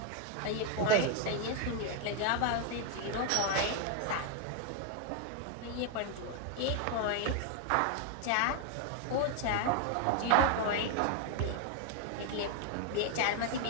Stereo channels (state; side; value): different; both; correlation 0.01